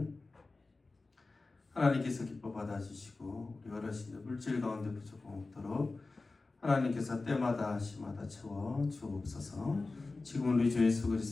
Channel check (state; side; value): quieter; right; 3.6 dB